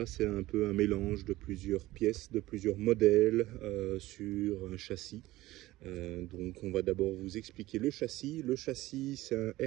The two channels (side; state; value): left; quieter; 17.4 dB